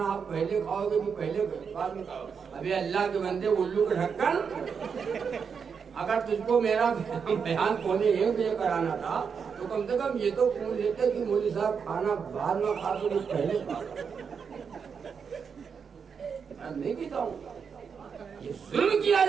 آپ پہلے کھاؤ گے کہ پہلے بعد میں کھاؤ؟ ابھی اللہ کے بندے، الو کا ڈھکن، اگر تجھ کو میرا بیان 1:15 کرانا تھا تو کم سے کم یہ تو پوچھ لیتے کہ مولوی صاحب کھانا بعد میں کھا تو پہلے کھا۔ میں نہیں کہتا ہوں، یہ ظلم کیا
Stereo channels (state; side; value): quieter; left; 6.3 dB